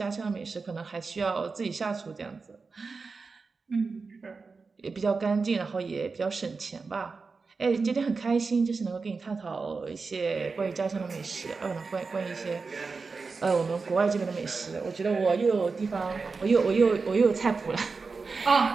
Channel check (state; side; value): quieter; left; 4.5 dB